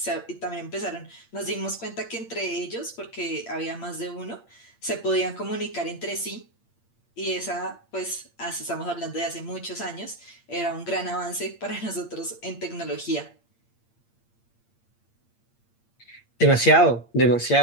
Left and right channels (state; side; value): late; right; 8.7 ms